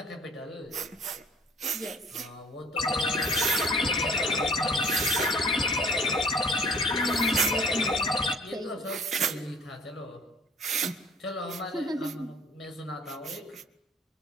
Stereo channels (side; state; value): both; normal; correlation 0.53